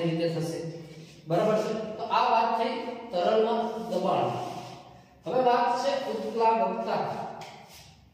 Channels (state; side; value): identical; both; correlation 1.00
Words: રીતે થશે, બરાબર છે। તો આ વાત થઈ તરલમાં દબાણ। હવે વાત છે ઉત્પ્લાવકતા।